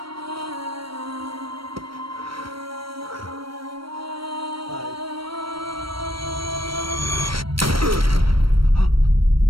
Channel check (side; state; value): left; late; 0.75 ms